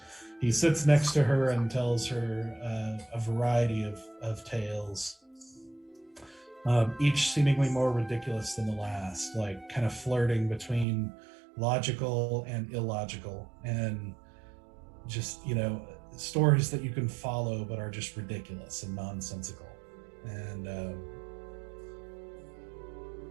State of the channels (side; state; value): left; drops out; at 10.9 s